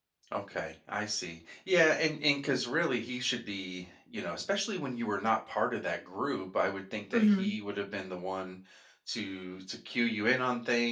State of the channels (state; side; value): identical; both; correlation 1.00